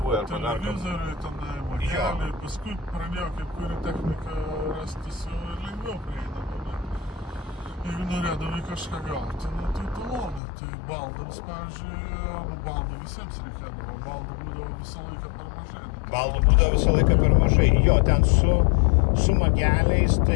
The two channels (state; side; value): drops out; right; at 10.4 s